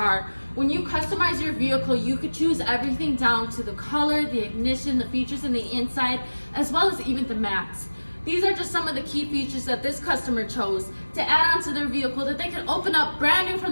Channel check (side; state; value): both; inverted; correlation -1.00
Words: When you customize your vehicle, you could choose everything down to the color, the ignition, the features in the inside, as well as even the mats. These are just some of the key features that this customer chose to add onto their vehicle that they can open up brand new